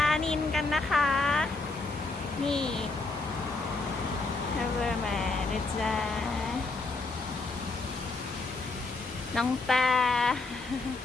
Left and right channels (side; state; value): right; quieter; 3.5 dB